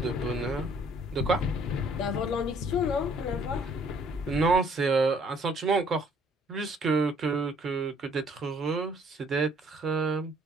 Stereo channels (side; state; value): both; normal; correlation 0.61